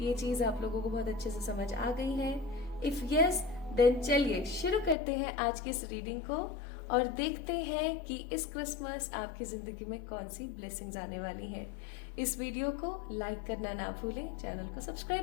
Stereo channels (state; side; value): drops out; right; at 5.0 s